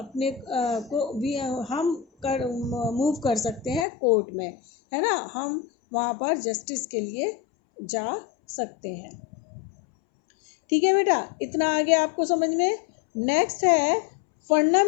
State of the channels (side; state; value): right; drops out; at 3.9 s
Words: को भी हम मूव कर सकते हैं कोर्ट में, है ना, हम वहाँ पर जस्टिस के लिए जा सकते हैं। ठीक है बेटा, इतना आगे आपको समझ में। नेक्स्ट है